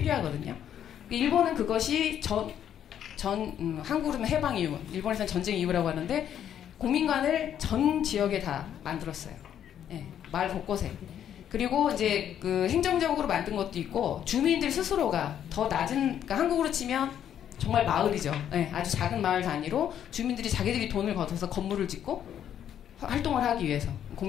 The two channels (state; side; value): quieter; right; 9.8 dB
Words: 일본은 그것이 한국으로는 해방 이후, 일본에서는 전쟁 이후라고 하는데 공민관을 전 지역에 다 만들었어요. 마을 곳곳에. 그리고 이제 그 행정적으로 만든 것도 있고 주민들 스스로가 더 낮은 그러니까 한국으로 치면 정말 마을이죠. 아주 작은 마을 단위로 주민들이 자기들이 돈을 걷어서 건물을 짓고 활동을 하기 위해서